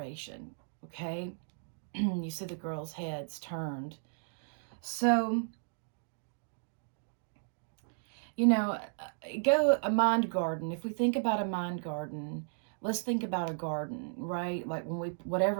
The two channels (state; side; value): silent; left; digital silence